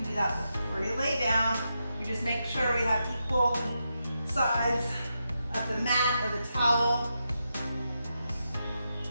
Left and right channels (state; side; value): inverted; both; correlation -0.86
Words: do that before you lay down. You just make sure we have equal sides of the mat or the towel.